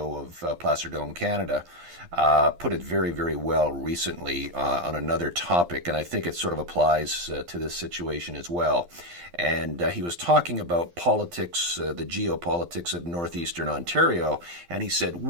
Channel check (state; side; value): late; left; 12 ms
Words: of Placer Dome Canada, put it very, very well recently on another topic, and I think it sort of applies to this situation as well. And he was talking about politics, the geopolitics of northeastern Ontario, and he said,